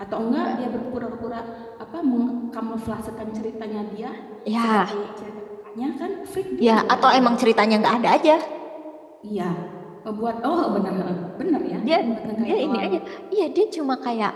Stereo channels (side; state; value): both; identical; correlation 1.00